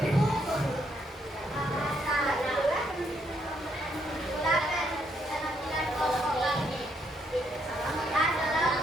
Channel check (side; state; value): both; normal; correlation 0.74